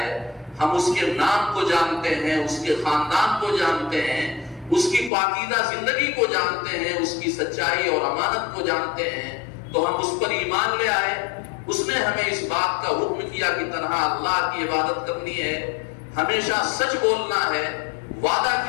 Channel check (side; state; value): right; drops out; at 5.1 s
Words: ہم اس کے نام کو جانتے ہیں, اس کے خاندان کو جانتے ہیں, اس کی پاکیزہ زندگی کو جانتے ہیں, اس کی سچائی اور امانت کو جانتے ہیں, تو ہم اس پر ایمان لے آئے. اس نے ہمیں اس بات کا حکم کیا کہ تنہا اللہ کی عبادت کرنی ہے, ہمیشہ سچ بولنا ہے, وعدہ